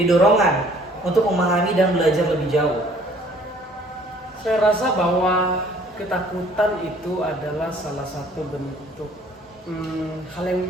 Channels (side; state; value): both; normal; correlation 0.57